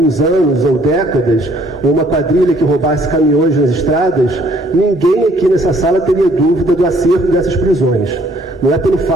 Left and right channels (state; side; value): normal; both; correlation 0.62